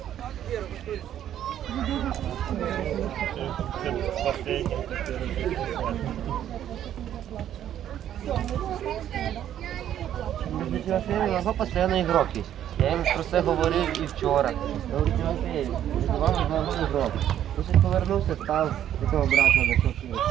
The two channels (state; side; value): quieter; left; 10.9 dB